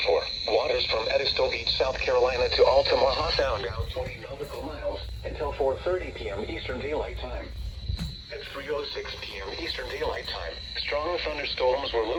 for waters from Edisto Beach, South Carolina to Altamaha Sound out 20 nautical miles until 4:30 p.m. Eastern Daylight Time. At 3:06 p.m. Eastern Daylight Time, strong thunderstorms were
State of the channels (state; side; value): identical; both; correlation 1.00